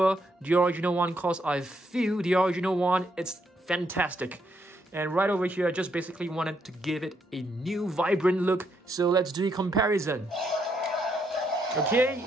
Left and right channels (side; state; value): both; normal; correlation 0.75